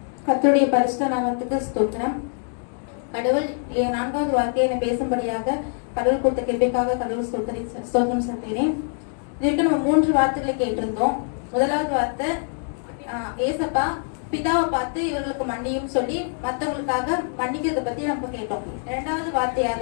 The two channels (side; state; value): right; silent; 55 dB below the other